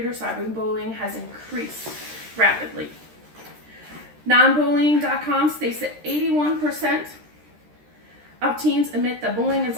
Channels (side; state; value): left; late; 13 ms